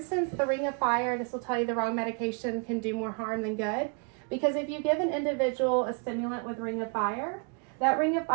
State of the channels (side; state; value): left; quieter; 36.3 dB